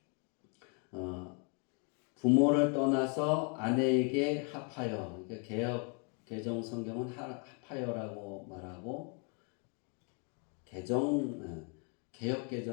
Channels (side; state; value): right; quieter; 37.4 dB